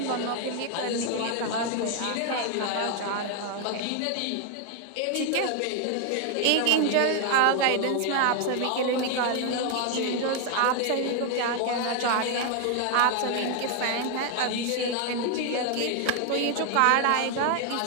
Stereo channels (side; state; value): both; different; correlation 0.01